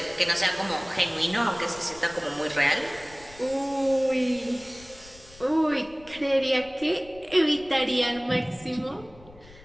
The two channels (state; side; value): noise; left; rumble, 22 dB below the sound